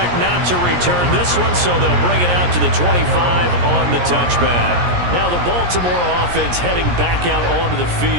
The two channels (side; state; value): left; late; 17 ms